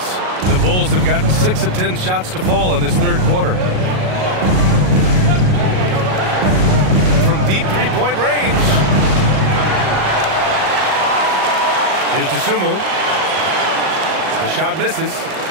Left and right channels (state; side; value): late; left; 38 ms